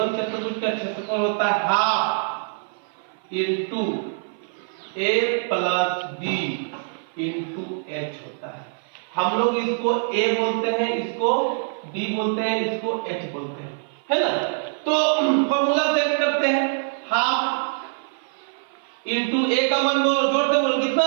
चतुर्भुज का क्षेत्रफल होता है half into A plus B into H होता है। हम लोग इसको A बोलते हैं, इसको B बोलते हैं, इसको H बोलते हैं, है ना। तो फॉर्मूला सेट करते हैं, हाफ इंटू A का मान बोलो, जोड़ते बोलो कितना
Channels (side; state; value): left; silent; 55 dB below the other